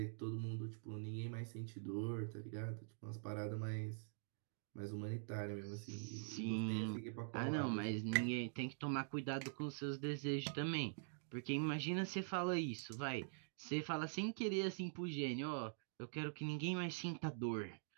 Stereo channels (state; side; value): silent; left; digital silence